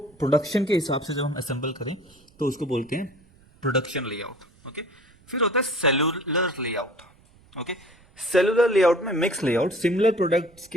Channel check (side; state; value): right; noise; rumble, 29 dB below the sound